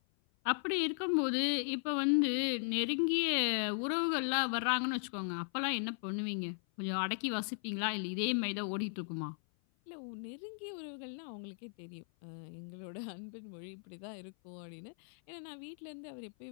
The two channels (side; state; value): right; silent; 53 dB below the other